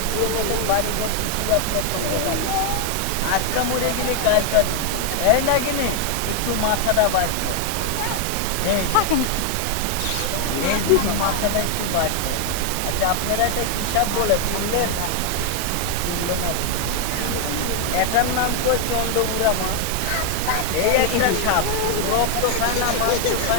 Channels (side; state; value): both; different; correlation 0.00